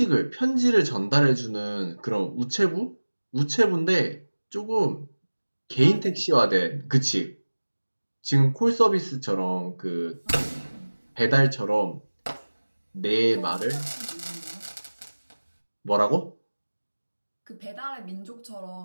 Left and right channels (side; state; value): both; inverted; correlation -1.00